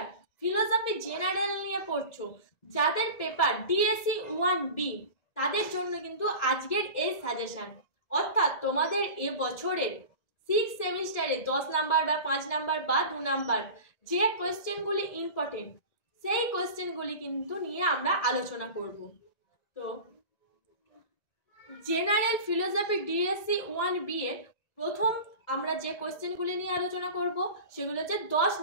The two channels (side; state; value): right; late; 1.9 ms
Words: ফিলোসফি জেনারেল নিয়ে পড়ছো, যাদের পেপার ডিএসসি 1B, তাদের জন্য কিন্তু আজকের এই সাজেশন। অর্থাৎ তোমাদের এ বছরের 6th সেমিস্টারে 10 নাম্বার বা 5 নাম্বার বা 2 নাম্বার যে কোয়েশ্চেনগুলি ইম্পর্টেন্ট, সেই কোয়েশ্চেনগুলি কিন্তু নিয়ে আমরা আলোচনা করব। তো জেনারেল ফিলোসফি ডিএসসি 1B এর প্রথম আমরা যে কোয়েশ্চেনগুলি নিয়ে আলোচনা করব সেগুলো হচ্ছে 10